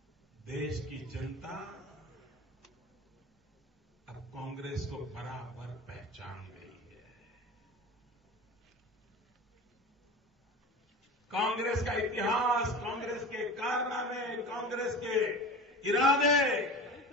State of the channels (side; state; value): both; normal; correlation 0.33